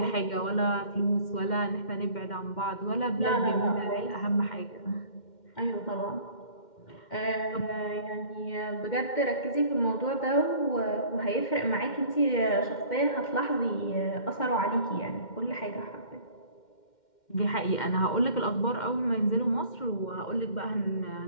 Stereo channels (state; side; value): late; right; 2.1 ms